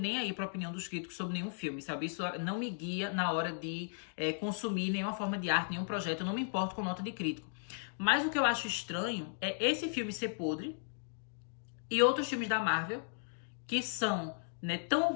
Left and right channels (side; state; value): right; silent; digital silence